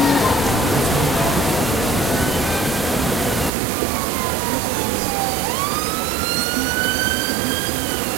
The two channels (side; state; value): left; drops out; at 3.5 s